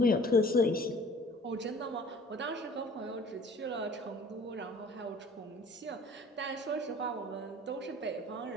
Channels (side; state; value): both; normal; correlation 0.49